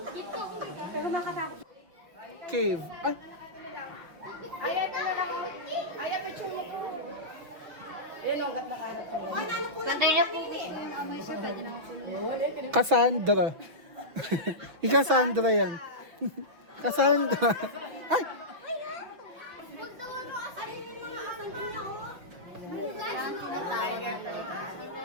Dito. Pero makatakot. Cave. Ay, Ayan na lang. Ayan, picture mo po. Ayan o, gat na kanak mo. Ganda niya po. May sir, pwede naman po. Cassandra. Yung Cassandra yan. Cassandra. Ay!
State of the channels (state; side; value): late; left; 5.9 ms